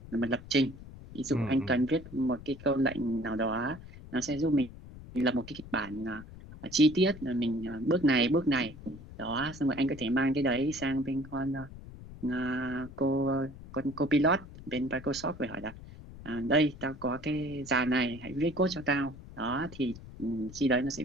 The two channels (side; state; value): left; noise; rumble, 16 dB below the sound